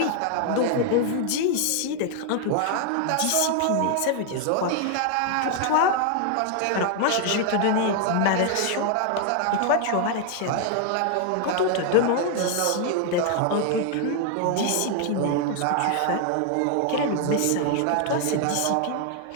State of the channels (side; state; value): both; different; correlation 0.00